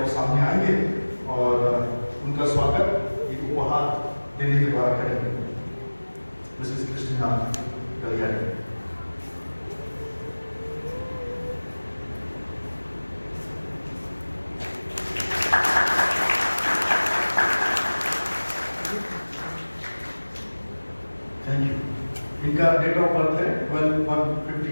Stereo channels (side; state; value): both; inverted; correlation -1.00